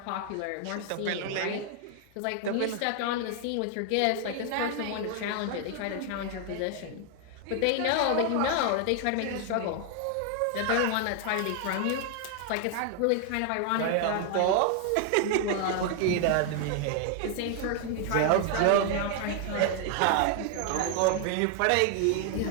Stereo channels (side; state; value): both; different; correlation 0.00